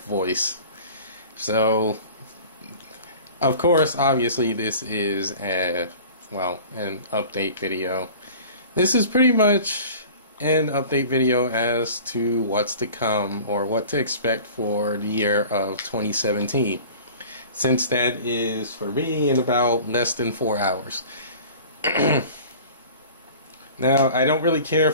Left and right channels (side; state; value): both; inverted; correlation -0.42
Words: So, of course, obviously this is an update video. This is pretty much an update video as to what's to come or what to expect for the year of 2017. Since that is, for me, in about less than 4 hours. Now, I don't really care